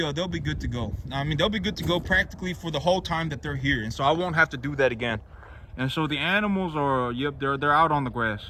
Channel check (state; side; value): identical; both; correlation 1.00